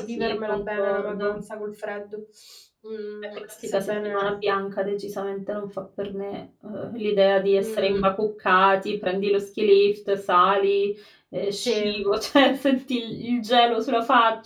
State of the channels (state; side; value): identical; both; correlation 1.00